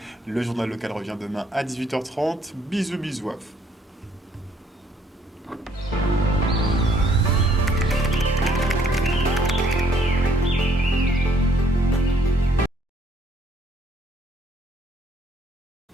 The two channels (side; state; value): both; normal; correlation 0.66